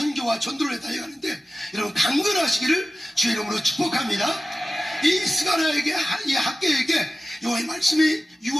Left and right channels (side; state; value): both; normal; correlation 0.95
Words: 전도를 달려가는데 여러분 강건하시기를 주의 이름으로 축복합니다. 이 스가랴에게 이 학계에게 여호와의 말씀이